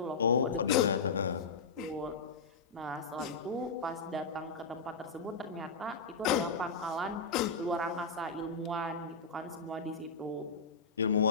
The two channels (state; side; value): quieter; right; 4.5 dB